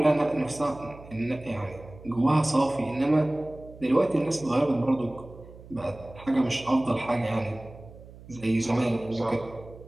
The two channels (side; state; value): right; noise; hum, 19 dB below the sound